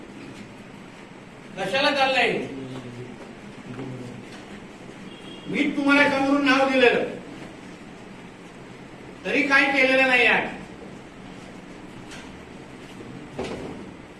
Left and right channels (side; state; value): both; identical; correlation 1.00